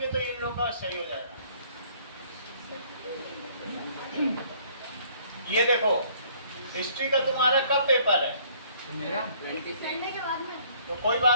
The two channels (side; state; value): both; inverted; correlation -0.60